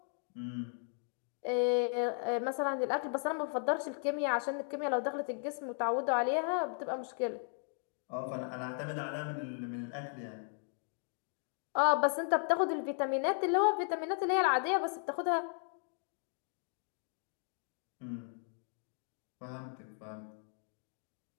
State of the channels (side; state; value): right; silent; 54 dB below the other